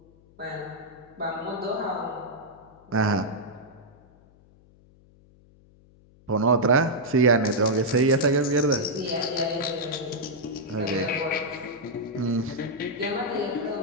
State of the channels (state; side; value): noise; left; hum, 28 dB below the sound